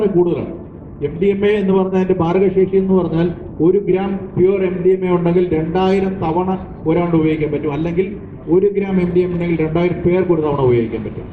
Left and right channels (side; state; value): both; identical; correlation 1.00